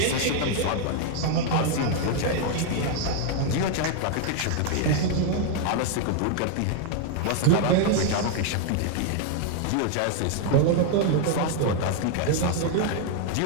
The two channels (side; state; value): both; different; correlation 0.00